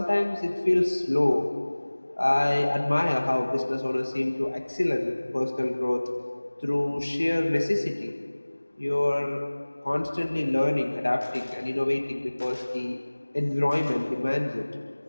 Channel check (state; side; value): inverted; both; correlation -1.00